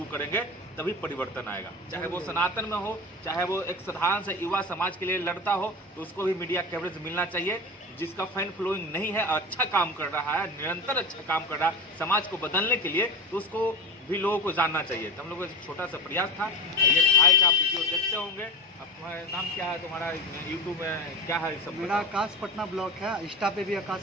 करेंगे तभी परिवर्तन आएगा। चाहे वो सनातन में हो, चाहे वो एक साधारण से युवा समाज के लिए लड़ता हो, तो उसको भी मीडिया कवरेज मिलना चाहिए। जिसका फैन फॉलोइंग नहीं है, अच्छा काम कर रहा है, निरंतर अच्छा काम कर रहा है समाज को बदलने के लिए, तो उसको भी लोगों को जानना चाहिए। तो हम लोगों का छोटा सा प्रयास था। ये भाई का आप वीडियो देखते होंगे। अब तुम्हारा नाम क्या है? तुम्हारा यूट्यूब में क्या है? सब मेरा आकाश पटना ब्लॉग है, इंस्टा पे भी आकाश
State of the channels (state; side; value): normal; both; correlation 0.26